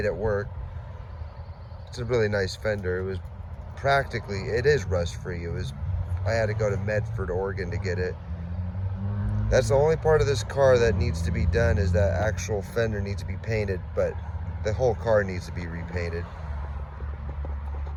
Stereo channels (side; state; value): both; identical; correlation 1.00